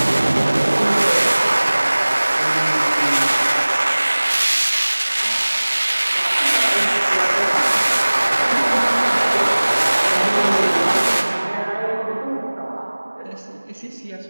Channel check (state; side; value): inverted; both; correlation -1.00